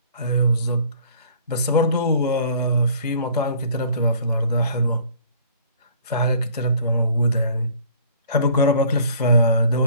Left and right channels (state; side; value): inverted; both; correlation -0.53